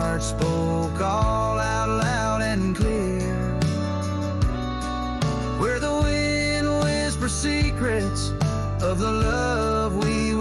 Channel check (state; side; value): identical; both; correlation 1.00